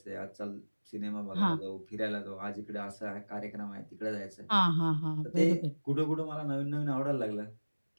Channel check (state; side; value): inverted; both; correlation -1.00